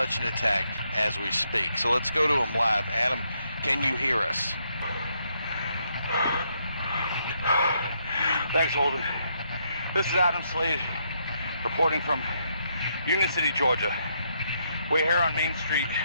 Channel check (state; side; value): inverted; both; correlation -0.76